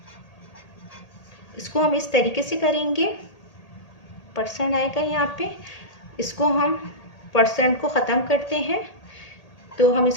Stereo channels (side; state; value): right; late; 1.8 ms